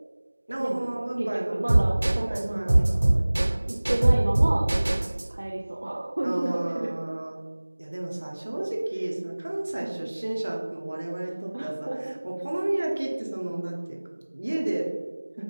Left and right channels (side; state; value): both; inverted; correlation -1.00